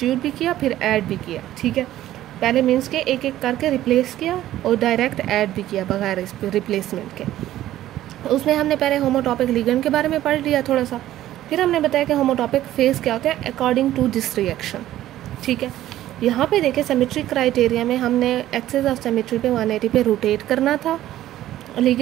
भी किया फिर ऐड भी किया। ठीक है। पहले मीन्स के एक एक करके रिप्लेस किया और डायरेक्ट ऐड भी किया बगैर इस रिप्लेसमेंट के। उसमें हमने पहले होमोटॉपिक लिगेंड के बारे में पढ़ लिया थोड़ा सा, फिर हमने बताया कि होमोटॉपिक फेज क्या होते हैं अकॉर्डिंग टू दिस रिएक्शन। ठीक है। यहाँ पे देखें सिमेट्री क्राइटेरिया में हमने एक्सिस ऑफ सिमेट्री पे 180 पे रोटेट करना था,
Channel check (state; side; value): quieter; left; 13.6 dB